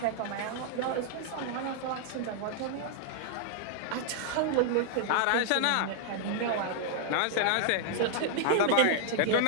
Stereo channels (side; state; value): both; different; correlation -0.01